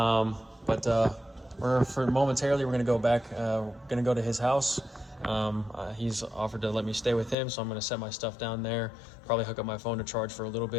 Momentarily we're gonna go back. Gonna go to his house. He's offered to let me stay with him, so I'm gonna set my stuff down there. Probably hook up my phone to charge for a little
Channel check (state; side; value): drops out; right; at 7.4 s